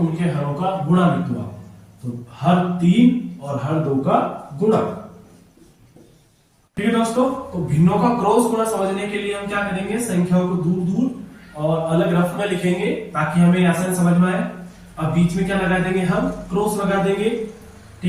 हरों का गुणा लिख दो आप। तो हर 3 और हर 2 का गुणा। ठीक है दोस्तों, तो भिन्नों का क्रॉस गुणा समझने के लिए हम क्या करेंगे, संख्याओं को दूर दूर और अलग रफ में लिखेंगे ताकि हमें आसान समझ में आए। अब बीच में क्या लगा देंगे, हम क्रॉस लगा देंगे।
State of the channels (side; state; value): both; identical; correlation 1.00